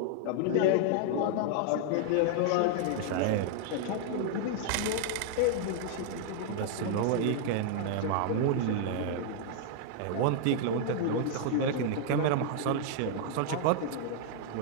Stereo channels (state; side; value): different; both; correlation 0.00